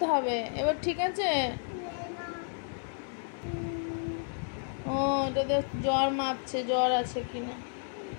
হবে এবার? ঠিক আছে। ও এটাতে জ্বর মাপছে, জ্বর আছে কিনা।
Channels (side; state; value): right; silent; digital silence